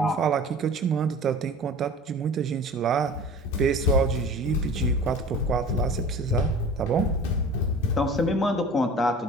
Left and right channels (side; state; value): both; normal; correlation 0.40